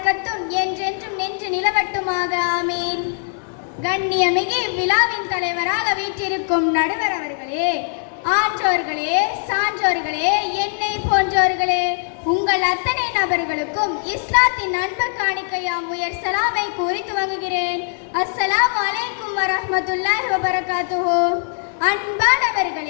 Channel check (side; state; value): right; silent; digital silence